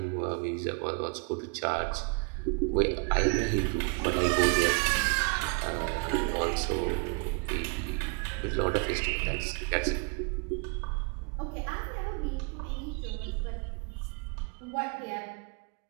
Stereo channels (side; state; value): left; quieter; 36.3 dB